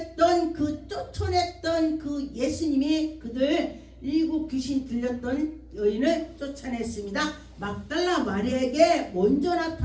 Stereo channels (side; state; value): both; identical; correlation 1.00